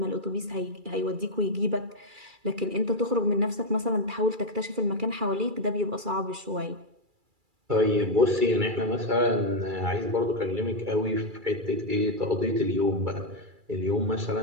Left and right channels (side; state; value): left; late; 2.3 ms